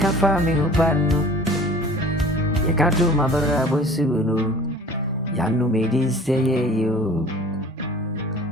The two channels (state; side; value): normal; both; correlation 0.45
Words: fa me hopano. Ya ka to mabara bosuno. Yano me din say you.